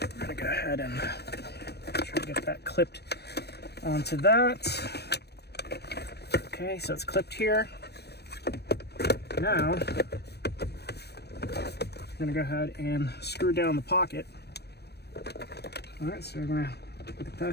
We're going to go ahead and try to get that clipped onto that. Okay, so it's clipped here. Now, I'm gonna go ahead and screw down the pocket. All right, so we're gonna put the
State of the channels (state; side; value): late; right; 0.47 ms